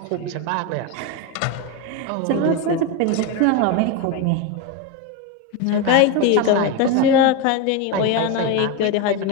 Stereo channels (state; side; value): different; both; correlation 0.03